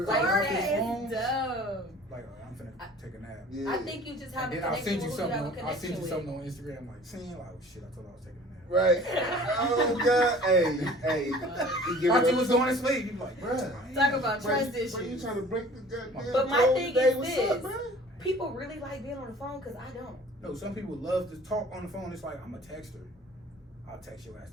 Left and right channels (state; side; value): normal; both; correlation 0.48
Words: off that his is phone, dumb. like I'm finna take a nap. Yeah. I think you just have And a then I'll connection send you with who you have a something. I'll send connection you with. something on Instagram, like saying, like, oh shit, I told her I was taking a nap. Right. Oh God. Hey. You give Thought it you up. was going to sleep. You like, bruh. Talk about Bruh, trust Bro, you issues. trying to break the goddamn But my code thing today? is What's this. up, bro? People really like being on the phone because I don't. No, some people love to talk on the phone. It's like, I'm a texter. I'll text your ass